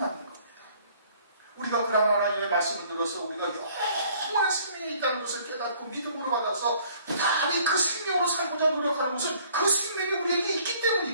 겁니다. 우리가 그런 하나님의 말씀을 들어서 우리가 영원한 생명이 있다는 것을 깨닫고 믿음으로 받아서 부단히 그 생명으로 살고자 노력하는 것은 그 생명이 우리에게 있기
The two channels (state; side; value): inverted; both; correlation -0.57